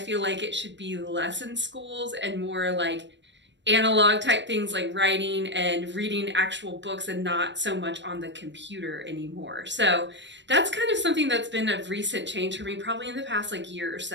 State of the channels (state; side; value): late; left; 0.53 ms